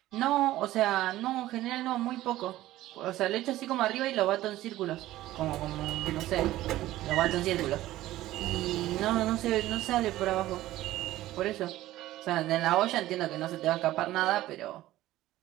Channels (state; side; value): quieter; left; 15.4 dB